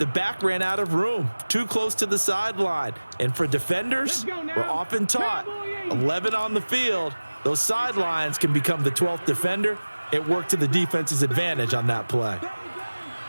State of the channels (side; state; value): both; inverted; correlation -1.00